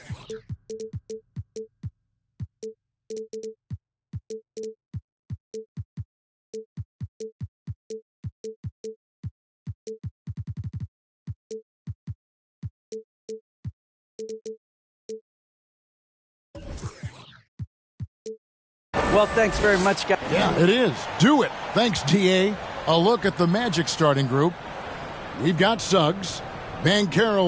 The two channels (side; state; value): both; identical; correlation 1.00